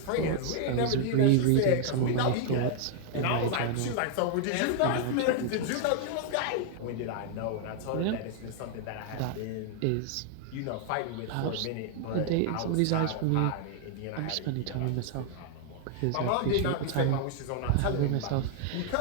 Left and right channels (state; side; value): different; both; correlation 0.00